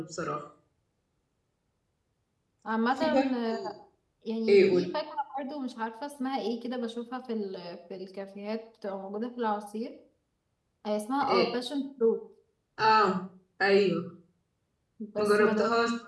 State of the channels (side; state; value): both; identical; correlation 1.00